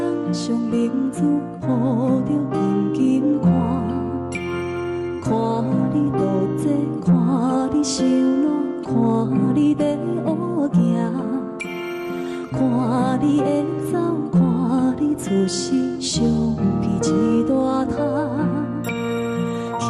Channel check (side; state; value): both; identical; correlation 1.00